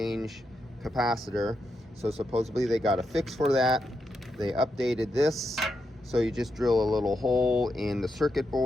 capacitor. So supposedly they got a fix for that. They updated this, so you just drill a little hole in the circuit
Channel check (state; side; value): normal; both; correlation 0.84